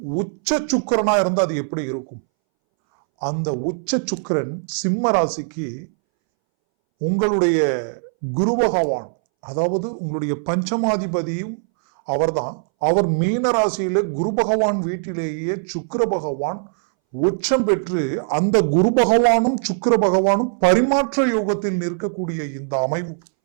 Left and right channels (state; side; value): silent; left; 63 dB below the other